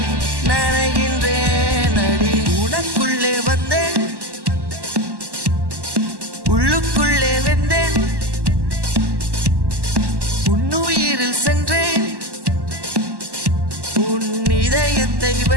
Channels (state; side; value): late; left; 1.1 ms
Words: நனைகின்றேன் அடி உனக்குள்ளே வந்தேன் உள்ளுக்குள்ளே வெந்தேன் உன்னுயிரில் சென்றேன் உன் இதயத்தை